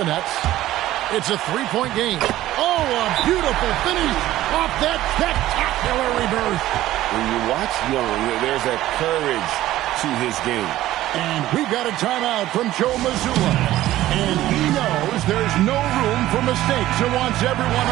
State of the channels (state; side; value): quieter; left; 14.8 dB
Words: Nets. It's a three-point game. Oh, a beautiful finish off that spectacular reverse. When you watch Young, there's a courage to his game. And we got a timeout from Joe Mazzulla. And he knows there's no room for mistakes and wants everyone